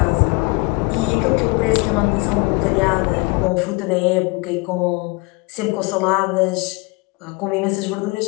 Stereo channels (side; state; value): right; quieter; 27.6 dB